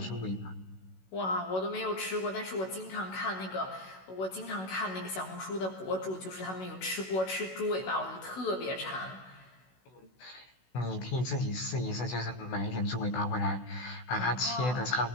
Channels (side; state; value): right; late; 16 ms